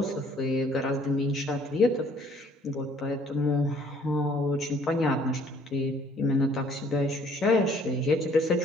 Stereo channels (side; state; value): both; normal; correlation 0.59